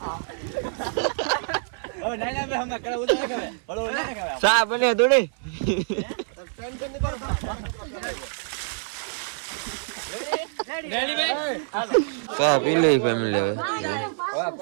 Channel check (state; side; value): silent; left; 61 dB below the other